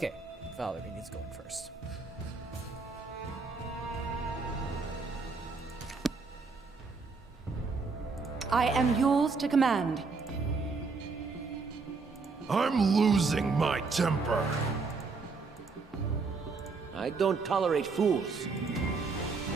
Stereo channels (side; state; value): left; quieter; 4.4 dB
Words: Valerie needs going first. I am yours to command. I'm losing my temper. I don't tolerate fools.